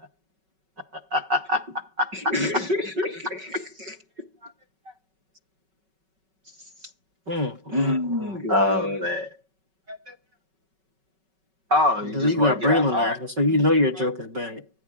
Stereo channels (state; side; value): late; left; 5.3 ms